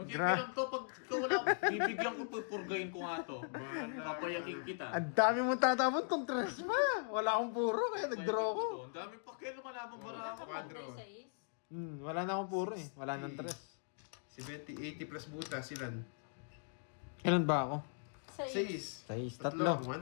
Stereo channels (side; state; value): right; silent; digital silence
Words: Gra- lang to, pag ikaw wala, bibigyan ko, pupurgayin ko nga to. Papayakin kita. Ang dami mong tatapon kung tres ma. Wala akong puro kaya nag-draw ko. Ang dami pa kayo lumalaban bara ako. Quadro. Wala na akong puro eh. Wala nang tres. Si Betty, 80 plus buta, silan. Kailan ba ako? 6. Size, tatlo.